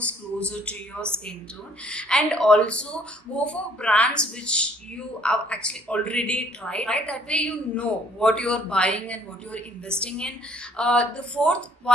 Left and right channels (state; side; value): normal; both; correlation 0.61